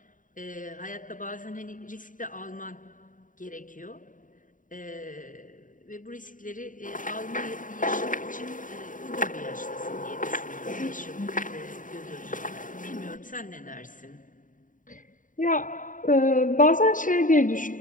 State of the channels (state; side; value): late; right; 0.38 ms